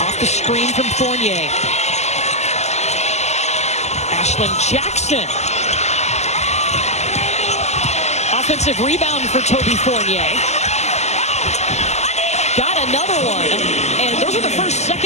off the screen from Fournier. Ashlyn Jackson. Offensive rebound for Toby Fournier. Got another one. And those are the first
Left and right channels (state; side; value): late; right; 0.33 ms